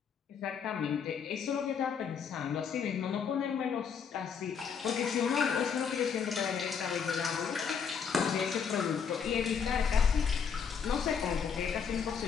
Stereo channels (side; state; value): right; quieter; 6.8 dB